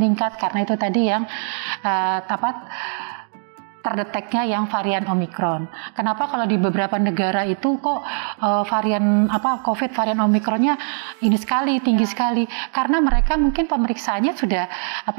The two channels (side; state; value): left; silent; digital silence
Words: karena itu tadi yang terdeteknya yang varian Omikron. Kenapa kalau di beberapa negara itu kok varian COVID varian Omikronnya ini sekali tinggi sekali? Karena mereka mungkin pemeriksaannya sudah